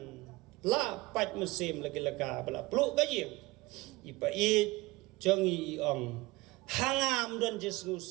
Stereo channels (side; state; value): left; quieter; 21.5 dB